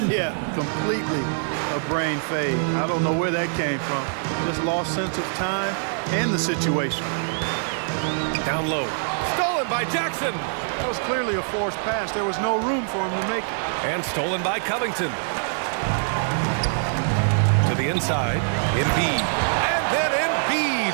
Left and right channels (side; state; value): left; silent; digital silence